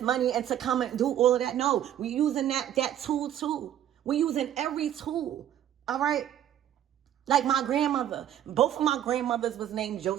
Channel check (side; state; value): left; quieter; 11.0 dB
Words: and to come and do all of that. No, we're using that tool too. We're using every tool. All right. Like my grandmother, both of my grandmothers was named